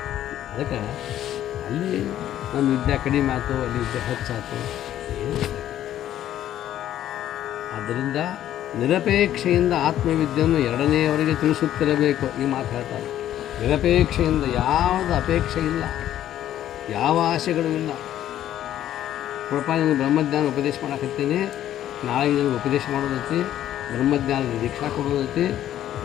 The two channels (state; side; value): quieter; right; 11.9 dB